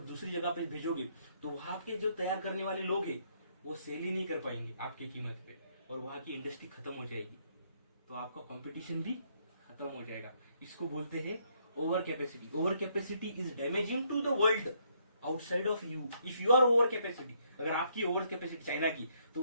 दूसरी जगह पे भेजोगे तो वहां के जो तैयार करने वाले लोग हैं वो सेल ही नहीं कर पाएंगे आपकी कीमत पे, और वहां की इंडस्ट्री खत्म हो जाएगी। तो आपका कंपटीशन भी खत्म हो जाएगा। इसको बोलते हैं over capacity. Over capacity is damaging to the world outside of you. If you are over capacity, अगर आपकी ओवर कैपेसिटी चाइना की, तो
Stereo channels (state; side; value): inverted; both; correlation -0.71